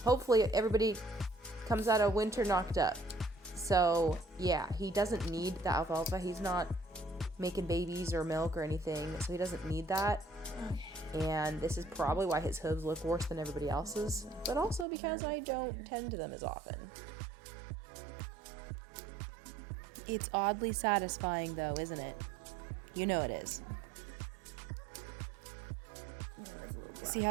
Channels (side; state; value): left; drops out; at 14.9 s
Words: hopefully everybody comes out of winter knocked up. So yeah, he doesn't need the alfalfa. He's not making babies or milk or anything, so he doesn't need that. And this is probably why his hooves look worse than everybody else's, but also because I don't tend to them as often. It's oddly satisfying though, isn't it? You know it is. See